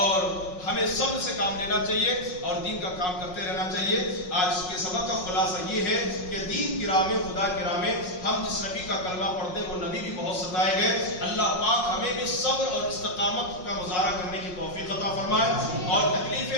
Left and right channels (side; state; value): right; late; 5.5 ms